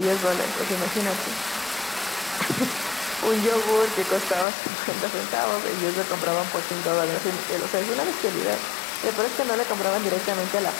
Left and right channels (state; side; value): drops out; right; at 4.5 s